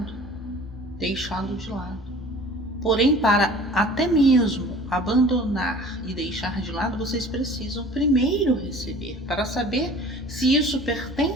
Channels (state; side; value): normal; both; correlation 0.45